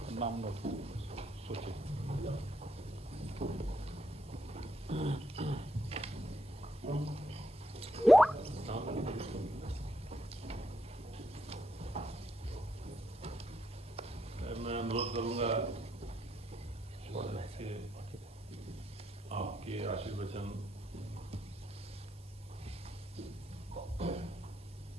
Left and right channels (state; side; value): normal; both; correlation 0.78